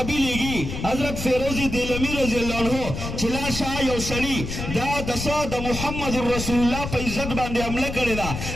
लेगी हजरत फेरोजी देलमी रजी अल्लाह अन्हु चिला शाह यो सरी दा दसा द मुहम्मदुर रसूलुल्लाह पे इज्जत बांधे हमला करे दा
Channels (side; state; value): left; noise; rumble, 6 dB below the sound